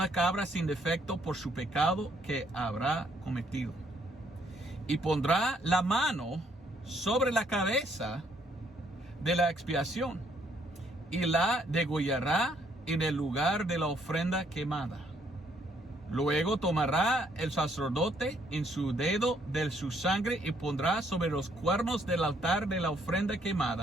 cabra sin defecto por su pecado que habrá cometido. Y pondrá la mano sobre la cabeza de la expiación y la degollará en el lugar de la ofrenda quemada. Luego tomará el sacerdote en su dedo de su sangre y pondrá sobre los cuernos del altar de la ofrenda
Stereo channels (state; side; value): normal; both; correlation 0.68